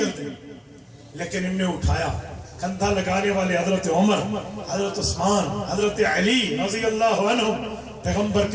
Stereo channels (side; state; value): both; identical; correlation 1.00